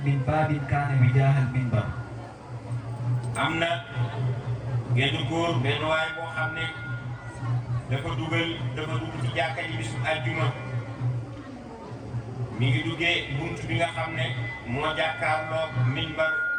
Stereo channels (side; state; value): both; identical; correlation 1.00